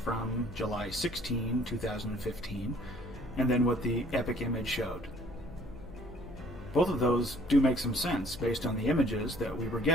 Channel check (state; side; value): noise; left; hum, 17 dB below the sound